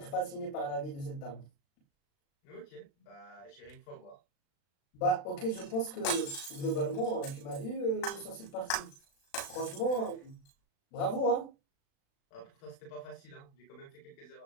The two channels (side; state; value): right; late; 36 ms